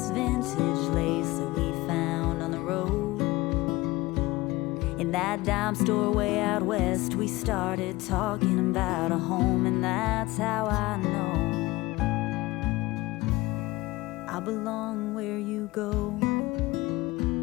vintage lace that we found on the road. In that dime store way out west, we started talking about a home. And that's how I know I belong where you go.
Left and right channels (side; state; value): right; quieter; 20.4 dB